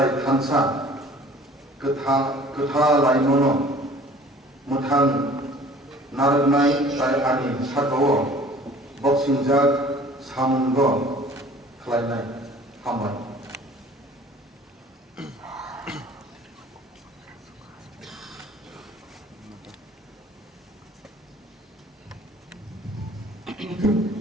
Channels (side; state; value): both; normal; correlation 0.50